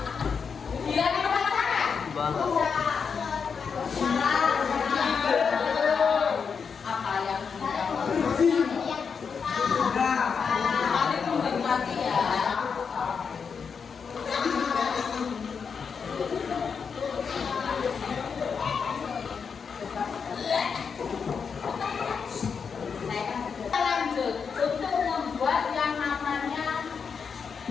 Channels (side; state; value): right; quieter; 6.0 dB